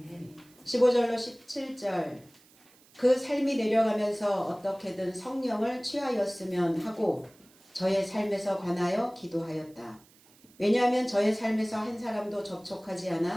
15절로 17절 그 삶이 내려가면서 어떻게든 성령을 취하였으면 하고 저의 삶에서 관하여 기도하였다. 왜냐하면 저의 삶에서 한 사람도 접촉하지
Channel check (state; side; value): noise; right; hiss, 28 dB below the sound